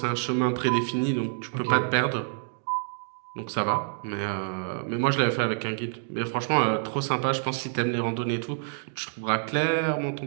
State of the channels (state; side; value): silent; left; digital silence